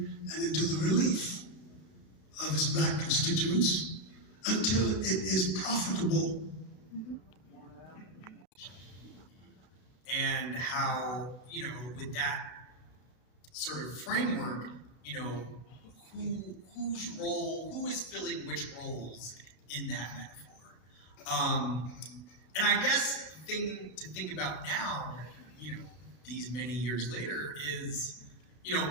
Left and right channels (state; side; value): late; right; 32 ms